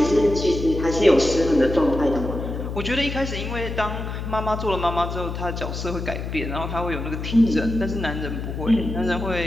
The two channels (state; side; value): noise; left; hum, 5 dB below the sound